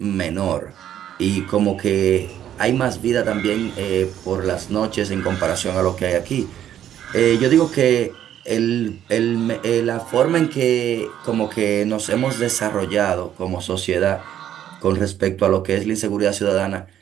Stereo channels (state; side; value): quieter; left; 10.8 dB